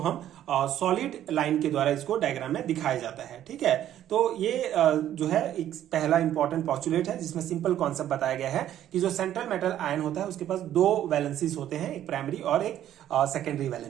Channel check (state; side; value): quieter; left; 11.7 dB